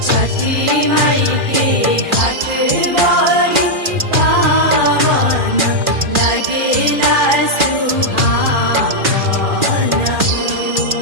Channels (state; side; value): late; left; 2.4 ms